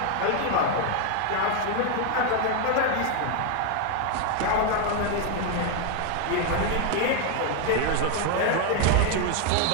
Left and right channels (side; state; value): both; different; correlation 0.01